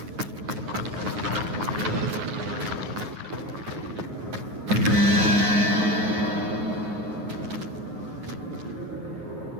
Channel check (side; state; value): left; late; 9.5 ms